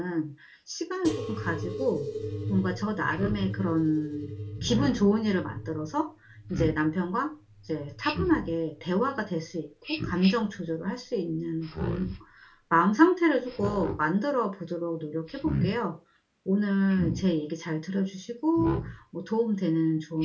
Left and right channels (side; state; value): both; identical; correlation 1.00